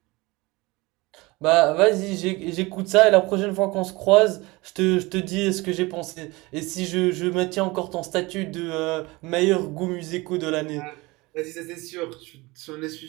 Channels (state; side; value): quieter; left; 22.9 dB